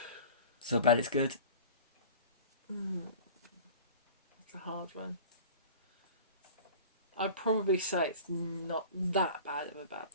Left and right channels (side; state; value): both; inverted; correlation -0.40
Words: So bad it's good. That's a hard one. I'd probably say it's not that bad of a bad